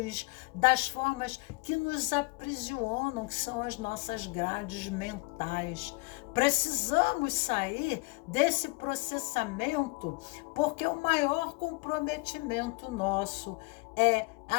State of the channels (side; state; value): right; quieter; 28.7 dB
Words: das formas que nos aprisionam, que são as nossas grades mentais. Precisamos sair desse processamento, porque o maior comprometimento nosso é